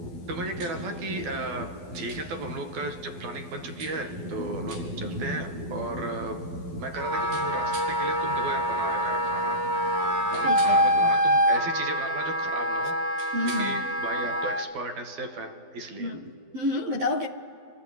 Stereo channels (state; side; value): late; left; 12 ms